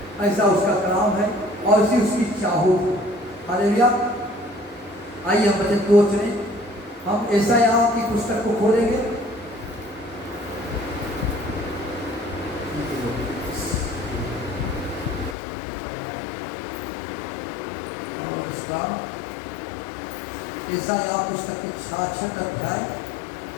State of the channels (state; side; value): drops out; right; at 15.4 s